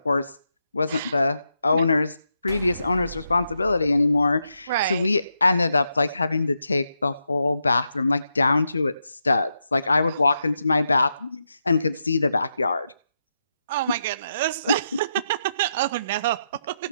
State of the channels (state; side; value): inverted; both; correlation -0.83